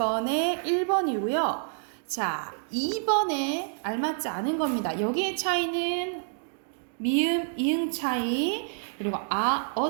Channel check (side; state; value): left; silent; digital silence